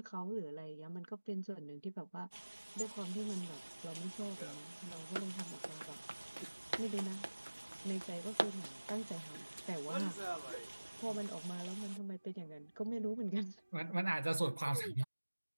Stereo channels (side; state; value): both; inverted; correlation -1.00